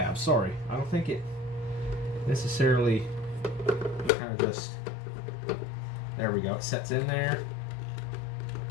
sorry. I don't think it necessarily kind of just, there we go. It sets in there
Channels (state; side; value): drops out; right; at 4.1 s